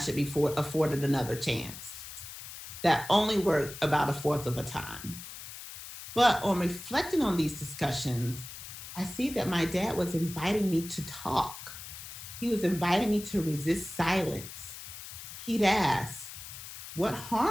be afforded another chance. That only worked about a fourth of a time. But on reflecting on these discussions, I see that my dad was inviting me to talk. He was inviting me to resist silence. He'd ask, what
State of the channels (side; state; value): left; noise; hiss, 12 dB below the sound